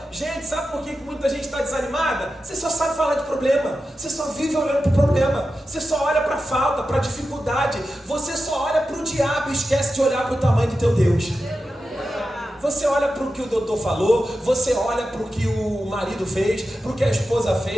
Gente, sabe por que muita gente está desanimada? Você só sabe falar de problema. Você só vive olhando para o problema. Você só olha para a falta, para a dificuldade. Você só olha para o diabo e esquece de olhar para o tamanho do teu Deus. Você olha para o que o doutor falou, você olha para o que o marido fez, para o que a esposa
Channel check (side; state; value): both; normal; correlation 0.91